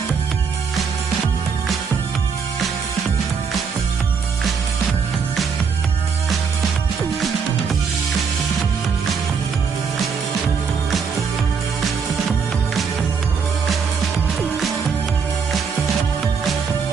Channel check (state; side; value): quieter; left; 5.9 dB